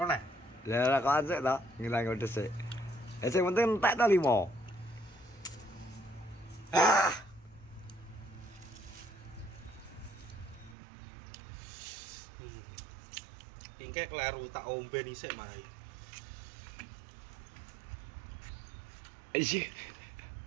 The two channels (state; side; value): drops out; left; at 10.8 s